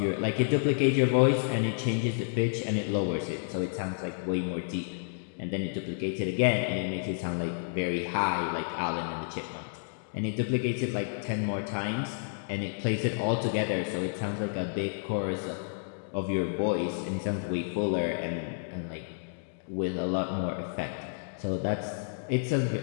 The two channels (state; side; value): silent; right; digital silence